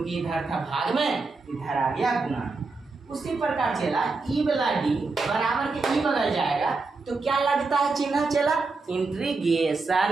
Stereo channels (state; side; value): quieter; left; 3.9 dB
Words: इधर था भाग में, इधर आ गया गुना में। उसी प्रकार चला ई वाला d बराबर के ई बगल जाएगा तो क्या लगता है चिन्ह चला